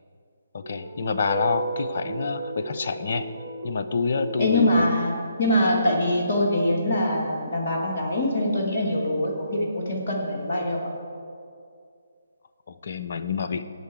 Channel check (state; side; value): inverted; both; correlation -0.72